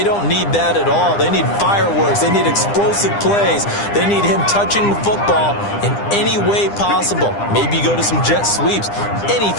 don't need that at all. They need fireworks. They need explosive plays. They need him touching the football in any way possible. Maybe go to some jet sweeps.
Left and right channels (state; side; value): late; right; 9.9 ms